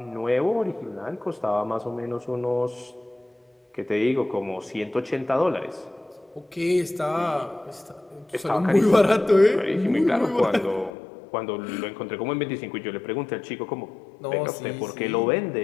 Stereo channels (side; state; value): right; drops out; at 10.9 s